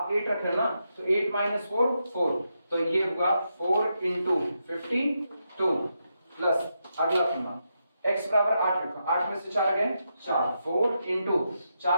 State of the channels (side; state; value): both; inverted; correlation -0.84